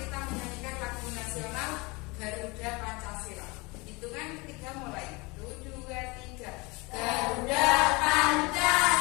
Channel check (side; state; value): right; quieter; 25.9 dB